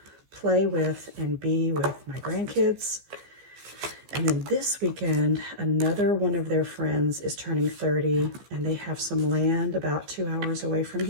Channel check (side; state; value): left; late; 15 ms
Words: play with and be with my grandkids. And then this weekend, another one of their friends is turning 30, and they have some land about 2 hours away from